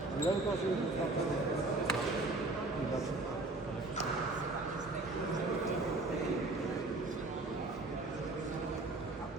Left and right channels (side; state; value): left; quieter; 3.0 dB